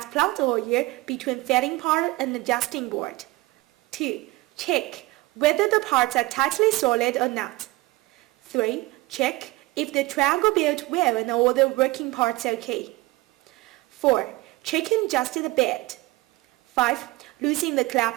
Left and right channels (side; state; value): left; quieter; 20.7 dB